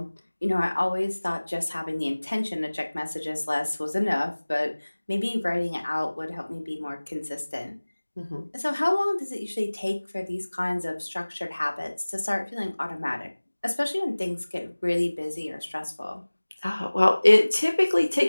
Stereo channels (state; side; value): inverted; both; correlation -1.00